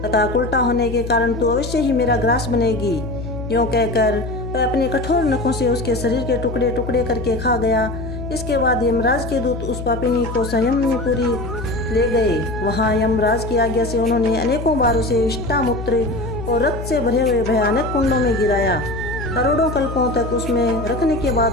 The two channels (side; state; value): left; noise; hum, 8 dB below the sound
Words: तथा उल्टा होने के कारण तू अवश्य ही मेरा ग्रास बनेगी। यूँ कहकर वह अपने कठोर नखों से उसके शरीर के टुकड़े टुकड़े करके खा गया। इसके बाद यमराज के दूत उस पापिनी को संयमनीपुरी ले गए। वहाँ यमराज की आज्ञा से उन्होंने अनेकों बार उसे विष्ठा, मूत्र और रक्त से भरे हुए भयानक कुंडों में गिराया। करोड़ों कल्पों तक उसमें रखने के बाद